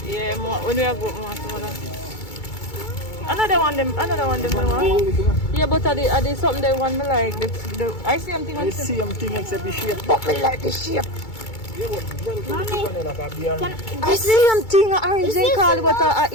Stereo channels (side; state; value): right; late; 2.3 ms